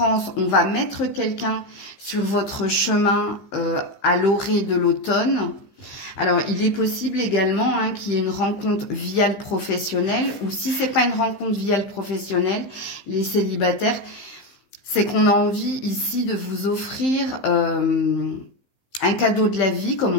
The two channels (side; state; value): right; late; 15 ms